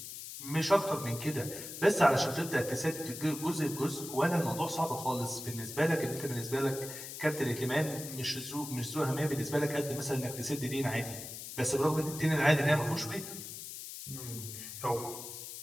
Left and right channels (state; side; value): noise; left; hiss, 10 dB below the sound